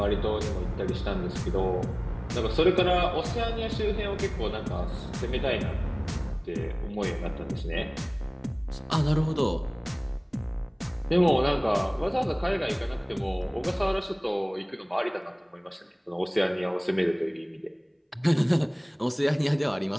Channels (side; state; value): both; identical; correlation 1.00